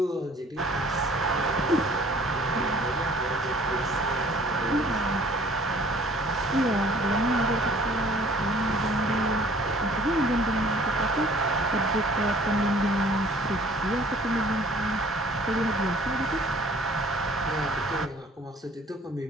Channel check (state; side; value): normal; both; correlation 0.54